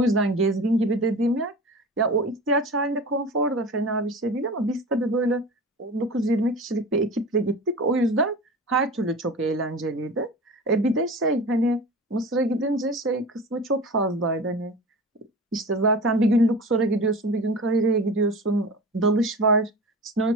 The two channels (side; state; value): both; normal; correlation 0.33